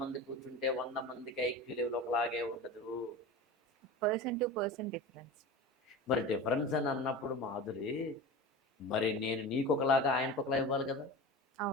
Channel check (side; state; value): both; normal; correlation 0.30